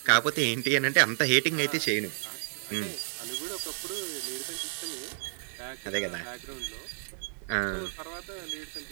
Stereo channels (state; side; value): silent; left; digital silence